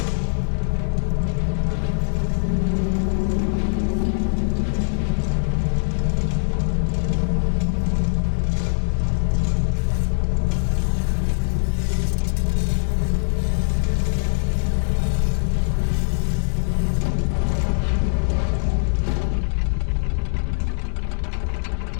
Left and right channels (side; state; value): right; silent; 64 dB below the other